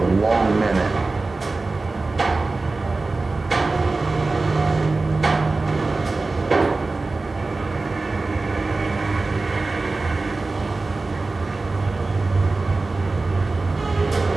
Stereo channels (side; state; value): left; quieter; 3.5 dB